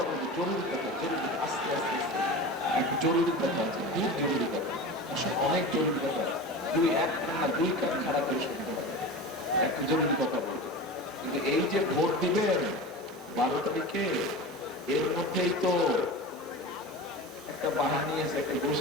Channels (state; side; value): normal; both; correlation 0.30